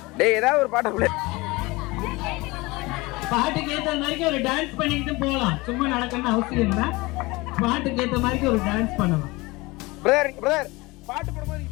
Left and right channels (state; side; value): quieter; right; 22.8 dB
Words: டேய் ஏதாவது ஒரு பாட்டு ப்ளே. பாட்டுக்கு ஏத்த மாதிரி ஒரு டான்ஸ் பண்ணிக்கிட்டு போலாம். சும்மா நடக்கணும்னு அவசியம் இல்ல. பாட்டுக்கு ஏத்த மாதிரி ஒரு டான்ஸ் பண்ணலாம். பிரதர் பாட்டு போடும்போது